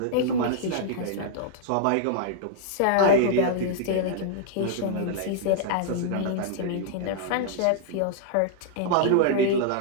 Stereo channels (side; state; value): both; different; correlation -0.01